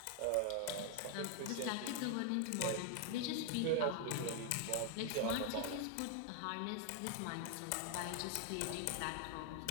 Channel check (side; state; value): both; different; correlation 0.00